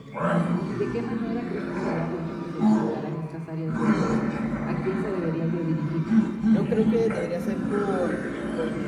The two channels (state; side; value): identical; both; correlation 1.00